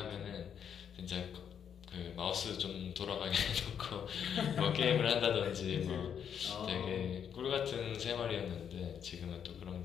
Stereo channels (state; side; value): quieter; right; 8.2 dB